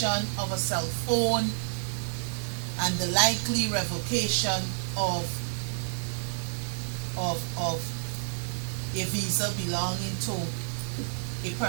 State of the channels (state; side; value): silent; left; digital silence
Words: of a cell phone and the likely revocation of a visa belonging to a